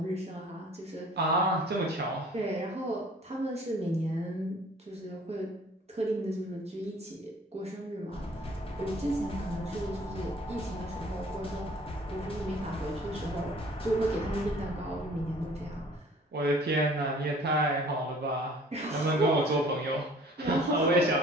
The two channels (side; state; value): both; normal; correlation 0.52